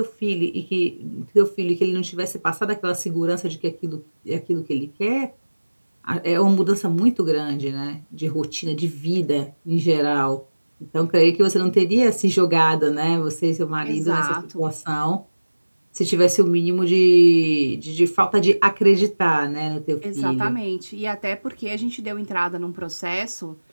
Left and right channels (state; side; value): inverted; both; correlation -1.00